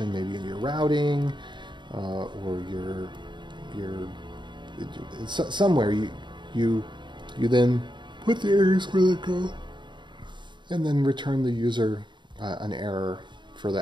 maybe in your routing, or somewhere you then put the errors where they go, and then return the user an error for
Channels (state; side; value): late; left; 0.22 ms